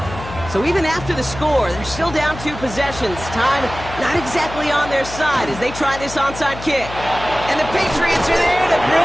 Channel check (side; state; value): left; noise; hum, 12 dB below the sound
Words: So even after the score, they're still down 2 possessions. Time not exactly on their side as they try this onside kick. And the Patriots are there to